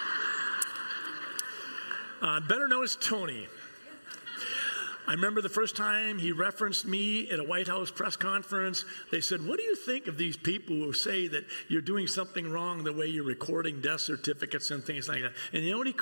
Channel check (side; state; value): both; inverted; correlation -1.00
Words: right. Better known as Tony. I remember the first time he referenced me at a White House press conference. They said, what do you think of these people who say that you're doing something wrong the way you're recording death certificates and things like that? And you know what he